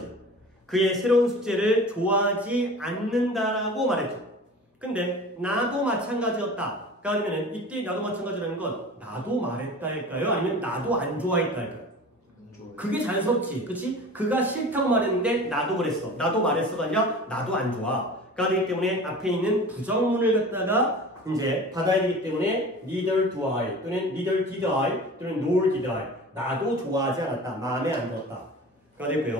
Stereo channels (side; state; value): both; normal; correlation 0.38